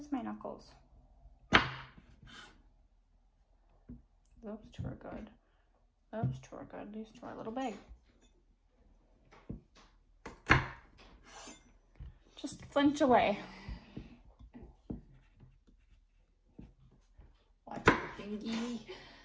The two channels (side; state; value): both; identical; correlation 1.00